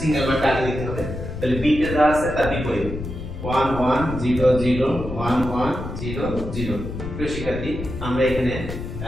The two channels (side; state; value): left; noise; rumble, 8 dB below the sound